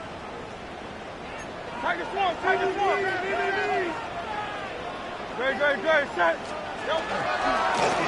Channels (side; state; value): both; identical; correlation 1.00